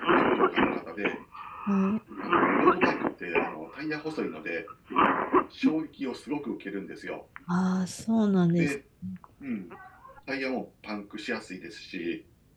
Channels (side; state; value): both; identical; correlation 1.00